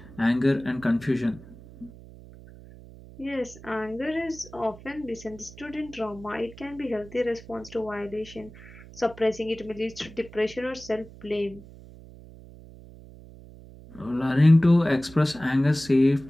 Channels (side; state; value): right; noise; hum, 19 dB below the sound